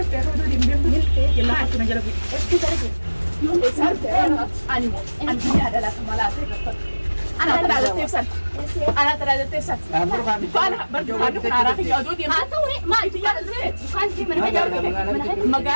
هذا اللي بيمدل يلا حطنا جلبي يوم سرت أنا الدنيا عدلة مالات أنا ترى هذا تفسد أنا ترى هذا تفسد أنا برضو أنا عراقي يادودي ما يتجار الزيت كان في من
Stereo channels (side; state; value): both; inverted; correlation -1.00